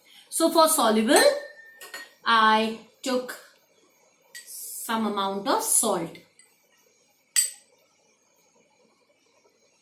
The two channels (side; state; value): both; identical; correlation 1.00